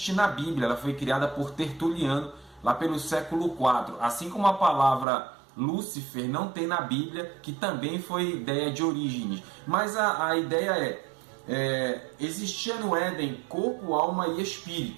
na Bíblia, ela foi criada por Tertuliano lá pelo século IV, assim como a palavra Lúcifer não tem na Bíblia, que também foi ideia de Orígenes. Mas a ideia existia no Éden corpo, alma e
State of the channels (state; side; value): drops out; left; at 5.1 s